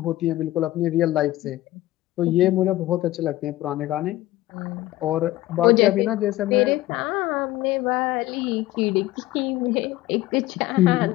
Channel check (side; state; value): right; quieter; 16.3 dB